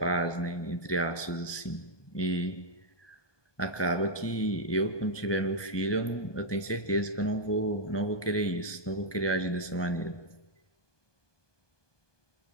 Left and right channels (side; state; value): right; late; 1.2 ms